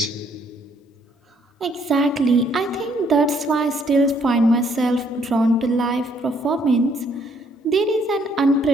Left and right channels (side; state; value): both; normal; correlation 0.67